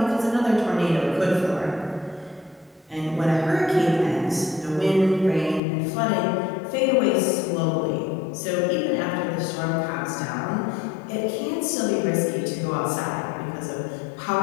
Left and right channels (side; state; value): right; drops out; at 5.6 s